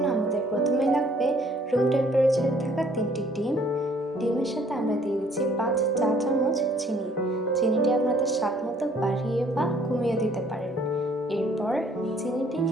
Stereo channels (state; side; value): normal; both; correlation 0.60